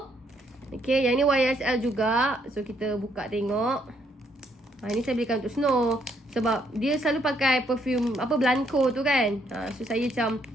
Okay, yang ni YSL juga. So kita buka tengok. Ini saya belikan untuk Snow sebab dia selalu pakai perfume Blanco tu kan. So saya macam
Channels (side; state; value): both; normal; correlation 0.71